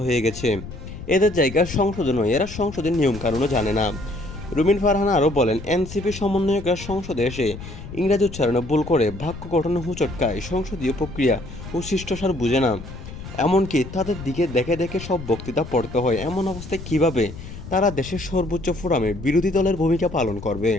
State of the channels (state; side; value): noise; left; rumble, 12 dB below the sound